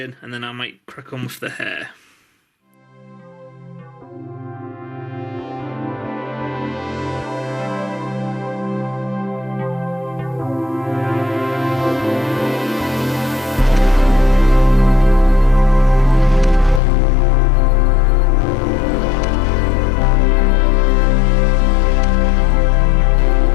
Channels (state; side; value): drops out; right; at 16.8 s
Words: and then I might crack on with the hair.